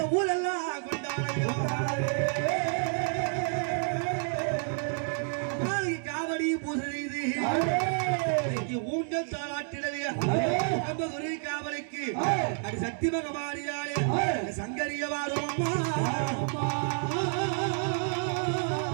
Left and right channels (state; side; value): silent; left; 58 dB below the other